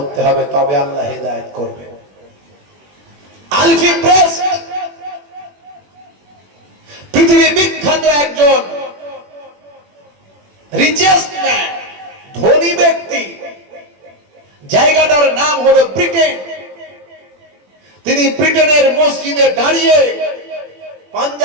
হবে তবে আল্লাহ হেদায়েত করবে আলফি প্রেস পৃথিবী বিখ্যাত একজন রিচেস্ট ম্যান ধনী ব্যক্তি জায়গাটার নাম হলো ব্রিটেন তিনি ব্রিটেনের মসজিদে দাঁড়িয়ে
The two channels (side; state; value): left; late; 21 ms